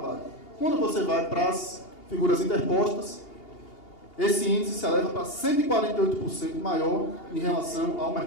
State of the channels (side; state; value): right; late; 2.8 ms